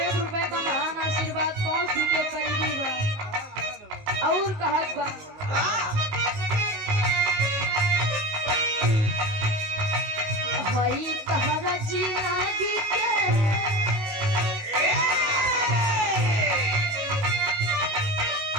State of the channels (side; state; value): left; late; 19 ms